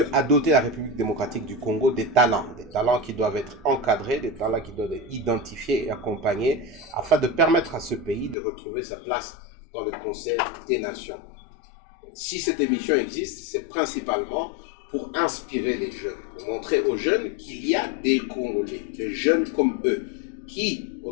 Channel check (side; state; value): right; drops out; at 8.3 s